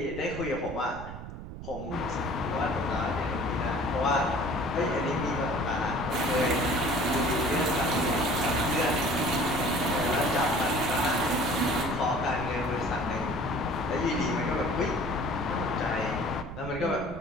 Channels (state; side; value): noise; right; rumble, 10 dB below the sound